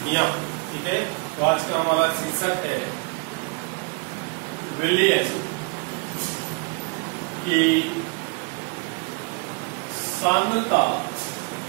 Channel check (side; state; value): left; quieter; 32.6 dB